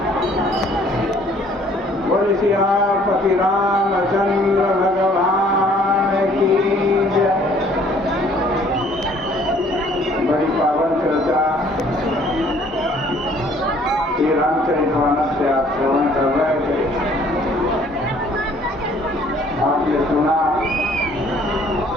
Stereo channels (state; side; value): normal; both; correlation 0.58